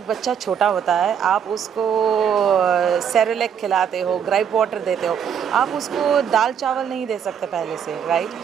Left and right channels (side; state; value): left; quieter; 8.0 dB